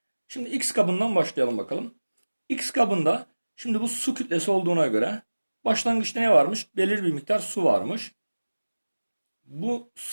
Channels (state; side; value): inverted; both; correlation -1.00